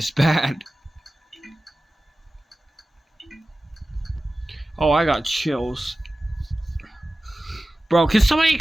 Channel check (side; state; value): both; normal; correlation 0.96